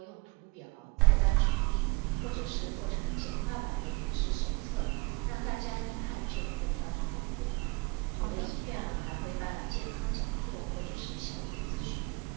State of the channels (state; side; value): quieter; left; 25.6 dB